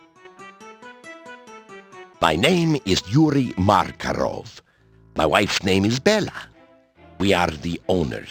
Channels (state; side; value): identical; both; correlation 1.00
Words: My name is Yuri Markarov. My wife's name is Bella. We are the